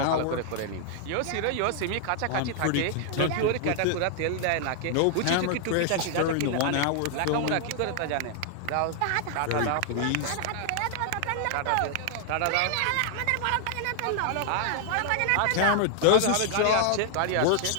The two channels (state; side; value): different; both; correlation 0.00